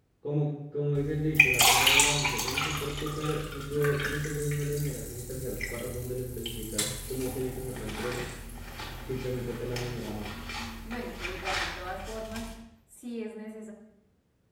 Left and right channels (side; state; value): both; identical; correlation 1.00